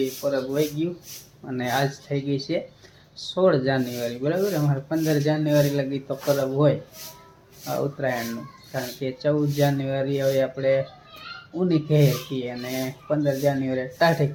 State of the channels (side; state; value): both; identical; correlation 1.00